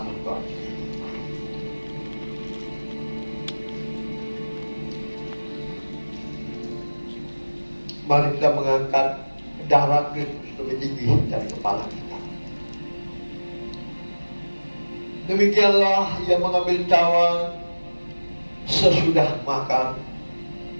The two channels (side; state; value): both; inverted; correlation -1.00